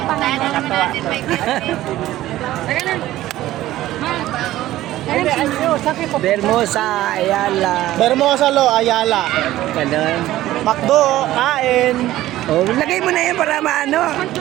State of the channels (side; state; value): left; quieter; 15.0 dB